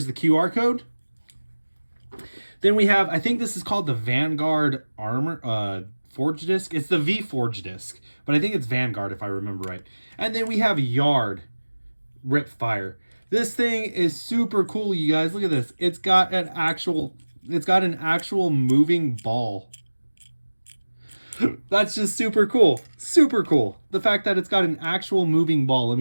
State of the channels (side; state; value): both; inverted; correlation -1.00